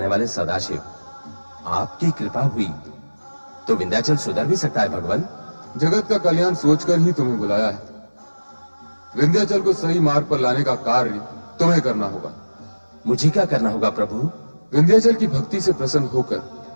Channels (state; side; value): inverted; both; correlation -1.00